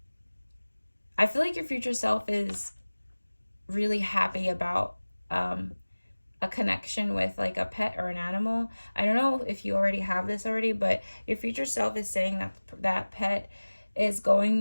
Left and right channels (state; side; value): inverted; both; correlation -1.00